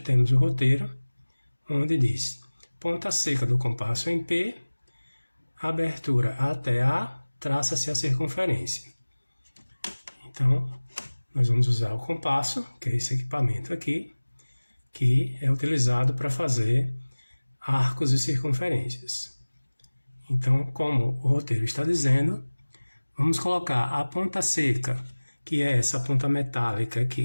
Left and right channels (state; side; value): inverted; both; correlation -1.00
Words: o roteiro, onde diz: ponta seca do compasso em P, abertura até A, traça-se a circunferência. Então, nós vamos usar o compasso, que é esse equipamento aqui, que é utilizado para fazer arcos e circunferências. Então, como o roteiro está dizendo, vamos colocar a ponta seca, que é essa ponta metálica